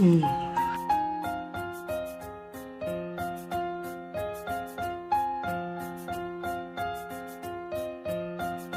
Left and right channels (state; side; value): identical; both; correlation 1.00